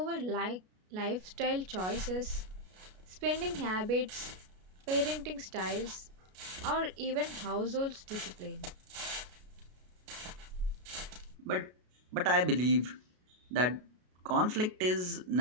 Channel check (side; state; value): left; late; 33 ms